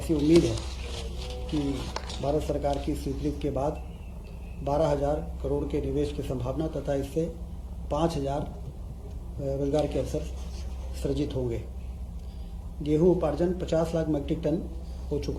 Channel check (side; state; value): both; identical; correlation 1.00